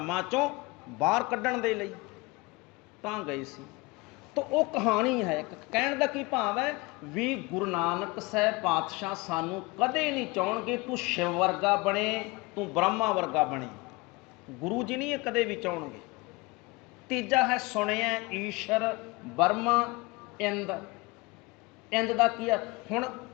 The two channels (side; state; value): right; quieter; 24.3 dB